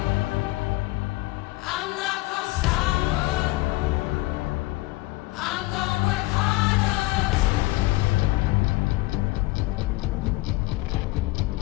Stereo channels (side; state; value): right; quieter; 20.2 dB